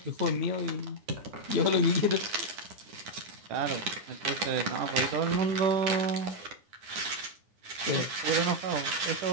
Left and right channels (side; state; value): left; late; 9.7 ms